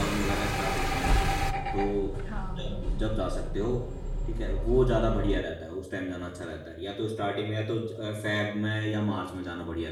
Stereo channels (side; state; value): both; identical; correlation 1.00